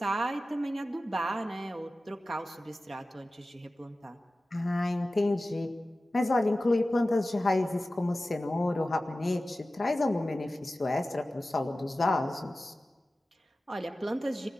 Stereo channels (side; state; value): both; normal; correlation 0.96